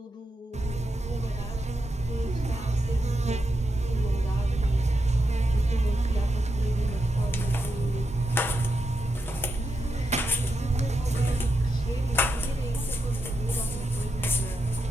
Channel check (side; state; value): both; normal; correlation 0.85